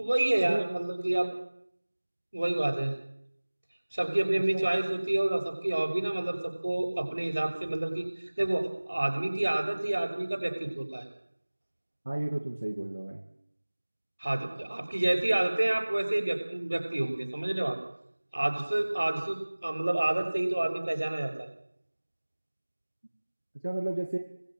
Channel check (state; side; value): inverted; both; correlation -1.00